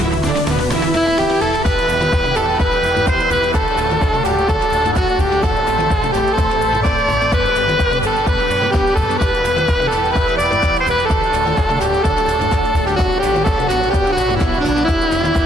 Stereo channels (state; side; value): normal; both; correlation 0.73